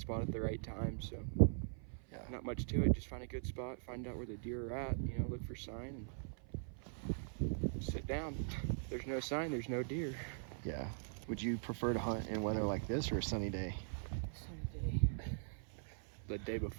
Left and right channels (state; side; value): silent; left; 50 dB below the other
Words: at the right time. So Yeah. not much to it. Just find a good spot, find out where the deer are at. You know, look for sign and sit down. If there's no sign, there's no deer. Yeah. Would you prefer to hunt in weather like this or a sunny day? Sunny day. The day